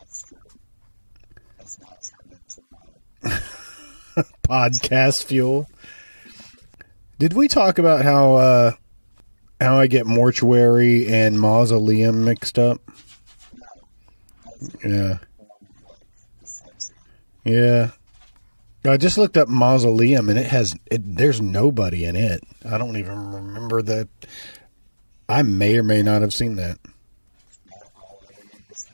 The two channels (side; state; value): both; inverted; correlation -1.00